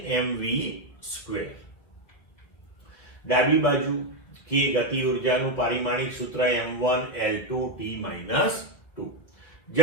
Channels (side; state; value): right; late; 1.7 ms